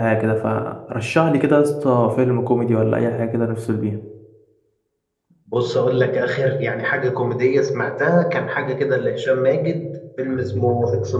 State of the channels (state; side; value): identical; both; correlation 1.00